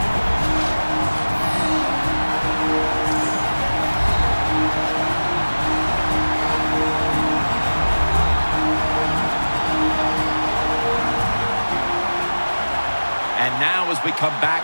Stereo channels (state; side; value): inverted; both; correlation -1.00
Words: And now as we come